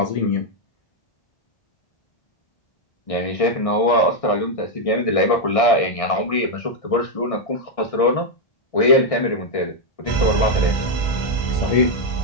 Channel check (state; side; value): late; right; 1.6 ms